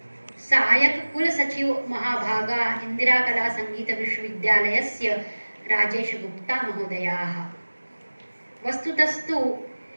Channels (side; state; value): both; inverted; correlation -1.00